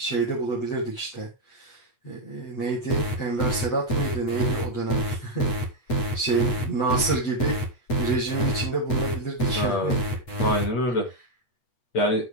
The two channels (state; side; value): late; right; 8.6 ms